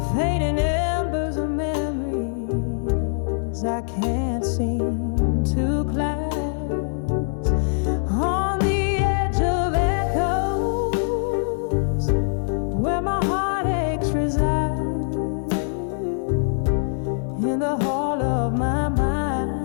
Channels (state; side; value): silent; right; 63 dB below the other